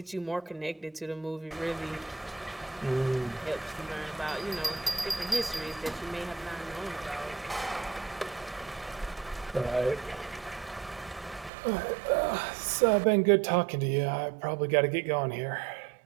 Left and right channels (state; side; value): drops out; left; at 11.5 s